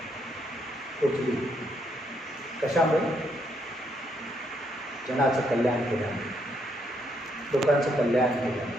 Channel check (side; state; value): both; normal; correlation 0.74